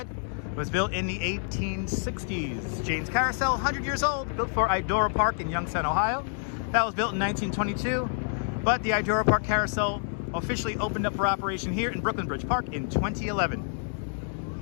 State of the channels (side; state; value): right; silent; digital silence